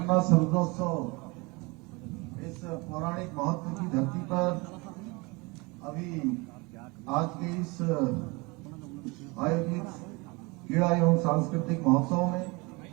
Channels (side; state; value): left; quieter; 26.3 dB